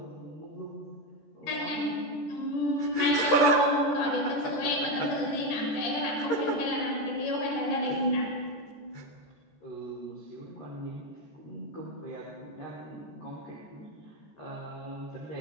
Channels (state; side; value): late; right; 14 ms